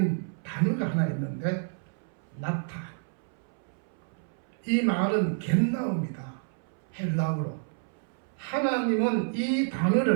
단어가 하나 있는데 나타. 이 말은 겟나우입니다. 헬라어로. 하나님은 이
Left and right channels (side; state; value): left; silent; 58 dB below the other